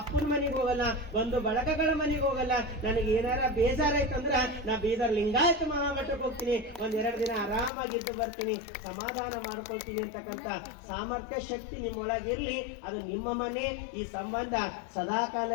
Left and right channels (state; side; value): drops out; right; at 7.7 s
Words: ಅಪ್ಪನ ಮನೆಗೆ ಹೋಗಲ್ಲ, ಒಂದು ಬಳಗಗಳ ಮನೆಗೆ ಹೋಗಲ್ಲ. ನನಗೆ ಏನಾರ ಬೇಜಾರಾಯ್ತಂದ್ರ ನಾ ಬೀದರ್ ಲಿಂಗಾಯತ ಮಹಾಮಠಕ್ಕೆ ಹೋಗ್ತೀನಿ, 1-2 ದಿನ ಆರಾಮಾಗಿದ್ದು ಬರ್ತೀನಿ, ಸಮಾಧಾನ ಮಾಡ್ಕೊಳ್ತೀನಿ ಅಂತಕ್ಕಂಥ ಸಾಮರ್ಥ್ಯ ಶಕ್ತಿ ನಿಮ್ಮೊಳಗಿರ್ಲಿ. ಅದು ನಿಮ್ಮ ಮನೆ, ಈ ಸಂಬಂಧ ಸದಾಕಾಲ